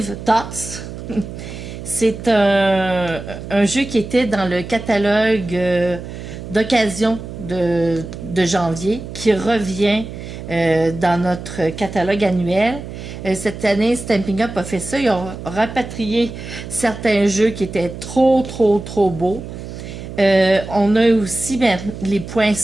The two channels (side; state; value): right; noise; hum, 10 dB below the sound